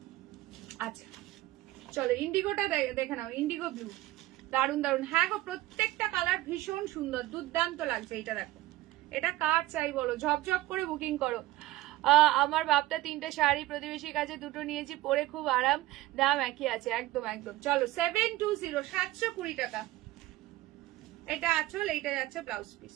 আচ্ছা চলো ইন্ডিগোটা দেখে নাও, ইন্ডিগো ব্লু দারুন দারুন। হ্যাঁ গো প্রত্যেকটা কালার ভীষণ সুন্দর, দুর্দান্ত লাগছে। এটা দেখো, এটা কার চাই বলো, ঝপঝপ করে বুকিং করো। আমার বাপটা 3টে শাড়ি, প্রতিবেশীর কাছে 2টো নিয়েছি, পরে খুব আরাম, দাম একই আছে। একদম একদম। চলো 720, 720 টাকা। এটা আঁচল, এইটা যাচ্ছে ব্লাউজ পিস।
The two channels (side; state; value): left; quieter; 17.1 dB